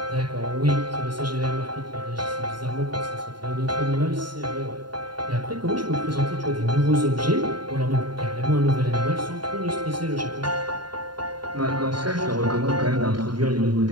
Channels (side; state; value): left; late; 0.71 ms